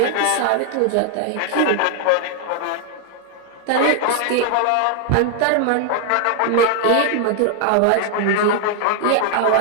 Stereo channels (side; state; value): both; different; correlation 0.00